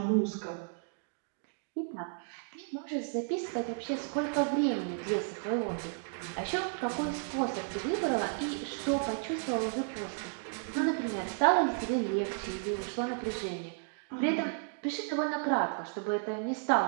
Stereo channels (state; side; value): silent; left; 56 dB below the other